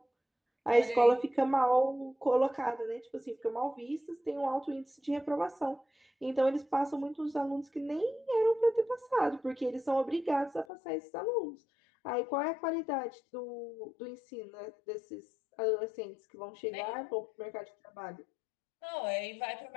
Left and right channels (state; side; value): drops out; right; at 10.7 s